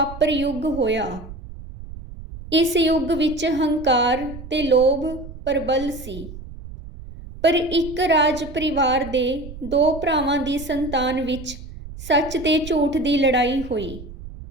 ਯੁੱਗ ਹੋਇਆ। ਇਸ ਯੁੱਗ ਵਿੱਚ ਹੰਕਾਰ ਤੇ ਲੋਭ ਪ੍ਰਬਲ ਸੀ, ਪਰ ਇੱਕ ਰਾਜ ਪਰਿਵਾਰ ਦੇ 2 ਭਰਾਵਾਂ ਦੀ ਸੰਤਾਨ ਵਿੱਚ ਸੱਚ ਤੇ ਝੂਠ ਦੀ ਲੜਾਈ ਹੋਈ।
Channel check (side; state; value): right; noise; rumble, 13 dB below the sound